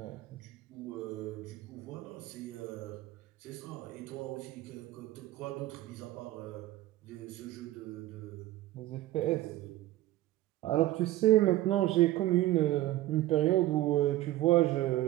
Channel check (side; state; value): left; quieter; 15.9 dB